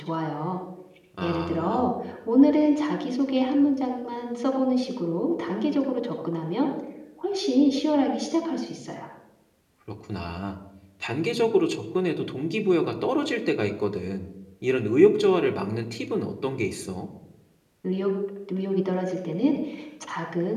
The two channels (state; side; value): identical; both; correlation 1.00